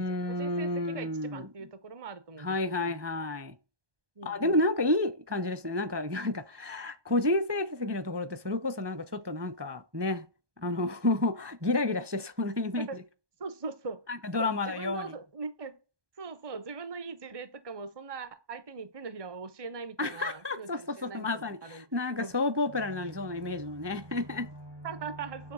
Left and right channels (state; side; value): late; left; 1.2 ms